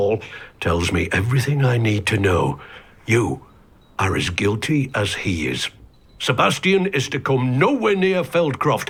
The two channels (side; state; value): both; identical; correlation 1.00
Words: tells me everything I need to know. You are as guilty as he is. Sebastian is to come nowhere near Feldcroft,